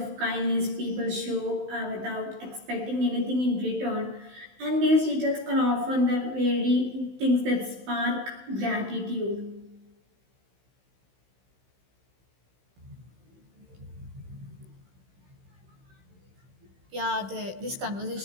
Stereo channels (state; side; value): late; left; 16 ms